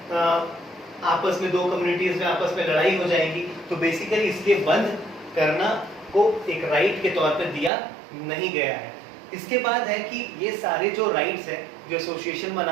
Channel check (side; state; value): left; drops out; at 7.7 s